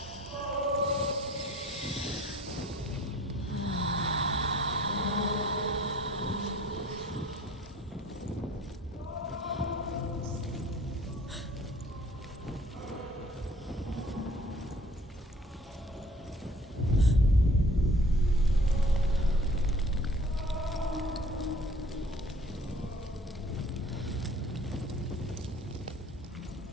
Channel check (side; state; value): both; normal; correlation 0.53